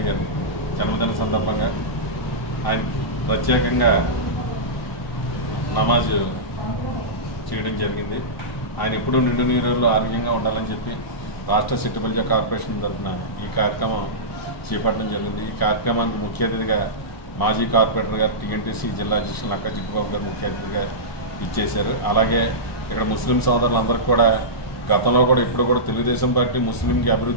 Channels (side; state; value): right; late; 1.0 ms